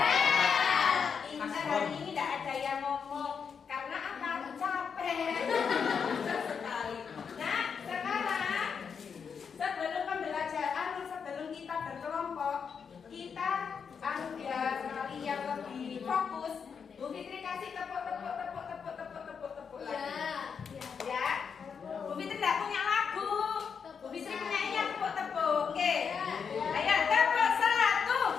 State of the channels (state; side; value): quieter; right; 6.4 dB